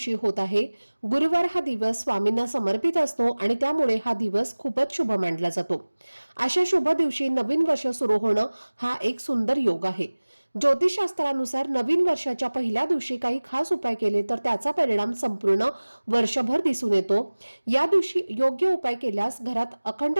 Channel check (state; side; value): inverted; both; correlation -1.00